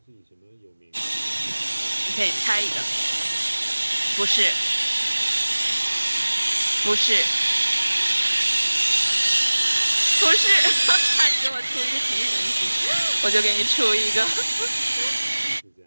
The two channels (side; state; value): both; inverted; correlation -1.00